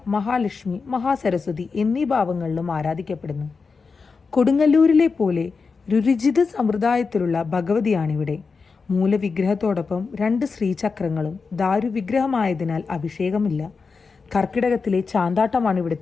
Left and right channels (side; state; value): right; quieter; 4.8 dB